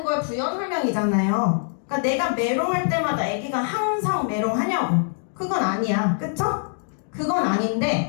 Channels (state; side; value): silent; right; digital silence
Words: 걸 부연 설명이잖아요. 그러니까 내가 메롱할 때마다 아기가 항상 메롱하냐고. 그건 아니야. 그쵸? 그건